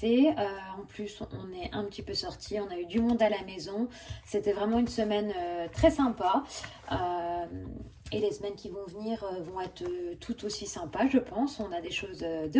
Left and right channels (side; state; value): both; identical; correlation 1.00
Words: En plus, on est un petit peu sortis, on a eu du monde à la maison. C'était vraiment une semaine très sympa. Euh, et les semaines qui vont venir vont être tout aussi sympas, je pense. On a des choses